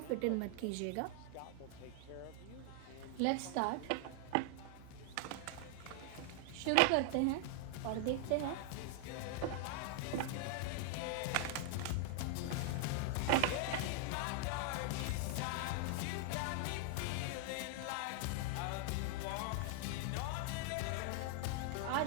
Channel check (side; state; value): both; different; correlation 0.00